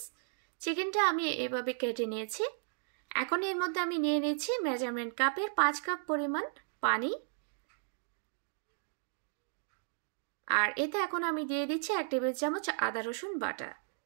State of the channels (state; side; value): silent; left; digital silence